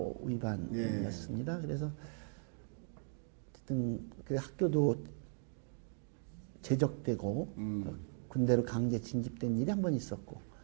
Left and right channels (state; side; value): silent; left; 52 dB below the other